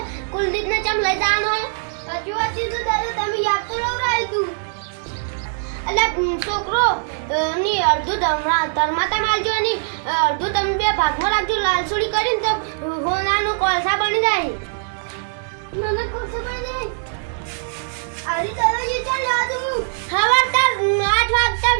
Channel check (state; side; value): silent; left; 61 dB below the other